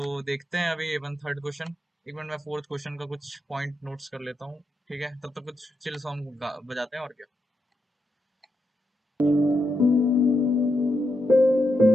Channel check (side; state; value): both; normal; correlation 0.84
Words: देखते हैं अभी अपन थर्ड क्वेश्चन, एक मिनट मैं फोर्थ क्वेश्चन का कुछ पॉइंट नोट्स कर लेता हूँ, ठीक है, तब तक कुछ चिल सॉन्ग बजाते हैं, और क्या।